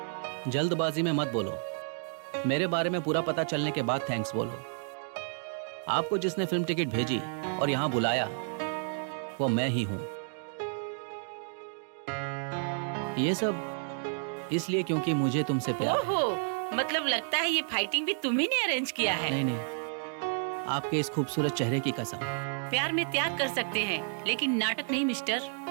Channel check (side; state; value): left; silent; digital silence